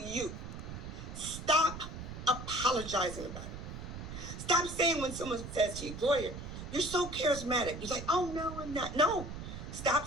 Stop apologizing about it. Stop saying when someone says to you, 'Gloria, you're so charismatic.'" You're like, "Oh, no, I'm not." No, stop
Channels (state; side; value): noise; right; rumble, 9 dB below the sound